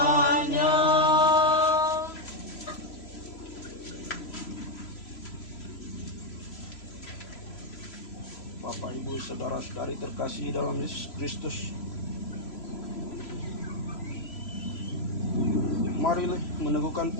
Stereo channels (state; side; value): late; right; 3.0 ms